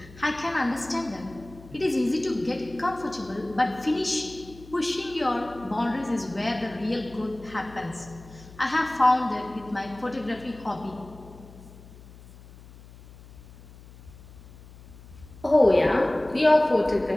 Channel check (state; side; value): noise; left; hum, 20 dB below the sound